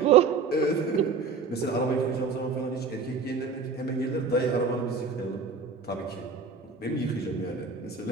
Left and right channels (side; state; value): left; quieter; 5.0 dB